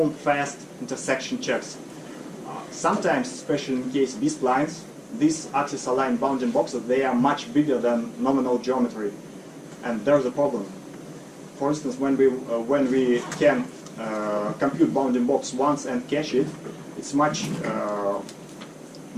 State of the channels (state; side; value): identical; both; correlation 1.00